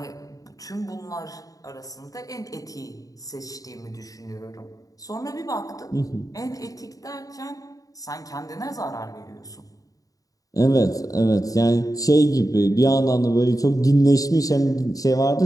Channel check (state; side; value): late; right; 0.17 ms